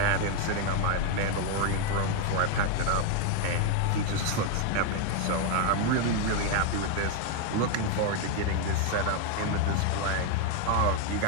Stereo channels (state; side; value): different; both; correlation 0.01